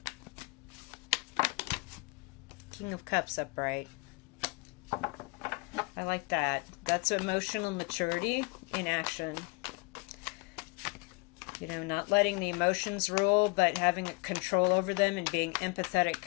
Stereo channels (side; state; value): right; quieter; 28.2 dB